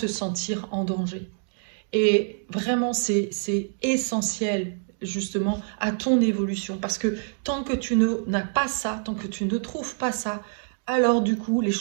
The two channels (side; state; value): left; silent; digital silence